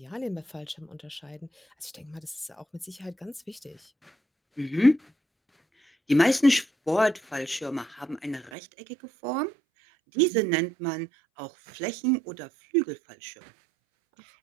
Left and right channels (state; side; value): drops out; left; at 8.5 s